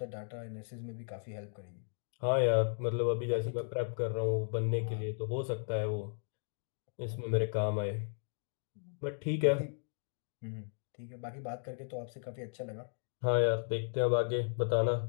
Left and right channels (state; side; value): silent; right; digital silence